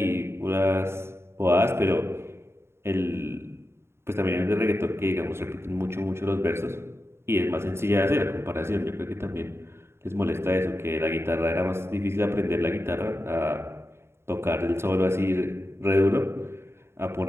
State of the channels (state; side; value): late; left; 0.12 ms